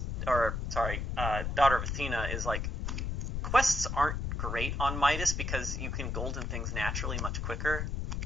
Daughter of Athena is, quests aren't great on Midas because you can golden things naturally much quicker.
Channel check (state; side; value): noise; left; rumble, 2 dB below the sound